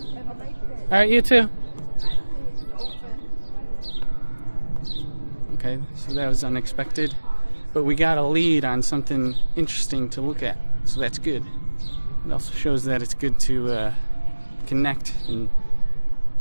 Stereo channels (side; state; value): both; inverted; correlation -1.00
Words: All right, you too. Okay, so that was unexpected, but we got a lead on something interesting to look at, so that's good. It also shows that it's good to connect, and